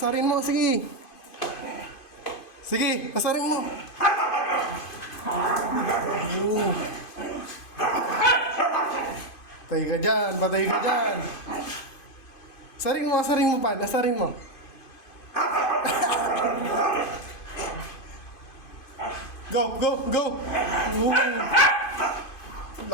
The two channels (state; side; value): late; right; 2.5 ms